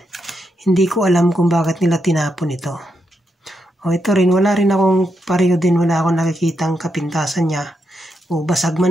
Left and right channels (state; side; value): normal; both; correlation 0.82